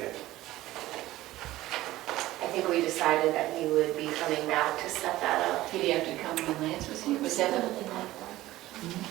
I think we decided that he would be coming back to set that up. Did he have to come when Lance was here? Was that a?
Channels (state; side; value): quieter; left; 16.4 dB